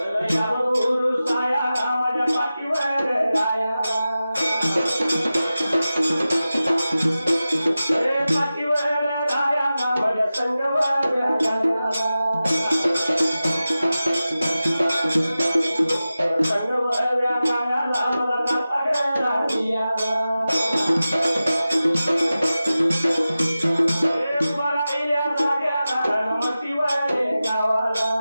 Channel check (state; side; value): inverted; both; correlation -0.95